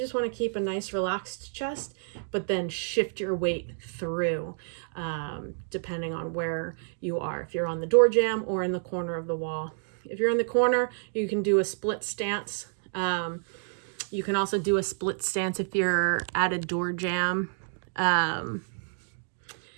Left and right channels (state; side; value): silent; left; digital silence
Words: want to keep a nice relaxed chest, but then shift your weight through, depending on where you are, if you're on the door jamb or in the corner of the wall. If you're in the corner, you can do a split stance. You can also do a split stance if you're at a door jamb.